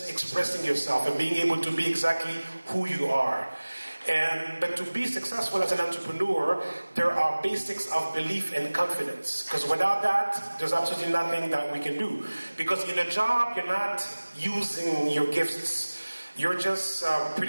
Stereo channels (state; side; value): inverted; both; correlation -1.00